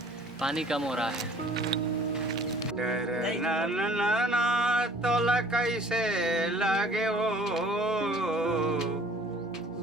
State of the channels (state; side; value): normal; both; correlation 0.53